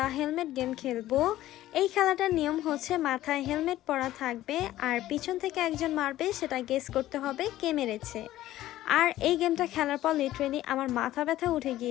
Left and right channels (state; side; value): quieter; right; 14.5 dB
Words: হেলমেট গেম খেলবো। এই খেলাটার নিয়ম হচ্ছে মাথায় হেলমেট পরা থাকবে আর পিছন থেকে একজন মারবে, সেটা গেস করতে হবে কে মেরেছে। আর এই গেমটা খেলার পর লিটারেলি আমার মাথা ব্যথা উঠে